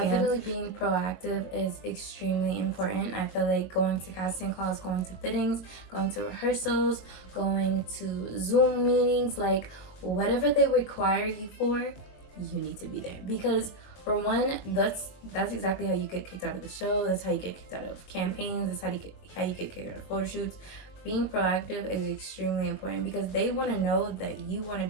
Definitely being proactive is extremely important. I feel like going to casting calls, going to fittings, going to rehearsals, going to Zoom meetings, like whatever they require you for, you need to be there. Because for one, that's exactly how you get kicked out of the show. That's how you get kicked out of campaigns. That's how you get kicked out of photo shoots. Being proactive is extremely important, because they want to know that you want to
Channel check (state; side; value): late; right; 22 ms